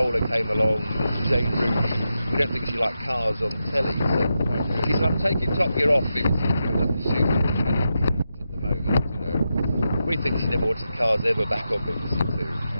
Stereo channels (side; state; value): both; inverted; correlation -0.88